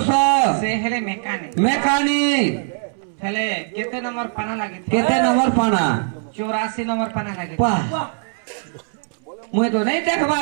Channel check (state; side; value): silent; left; 65 dB below the other